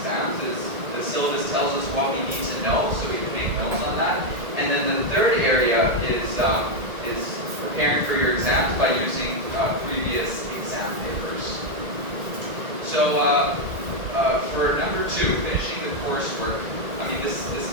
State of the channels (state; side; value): late; left; 1.8 ms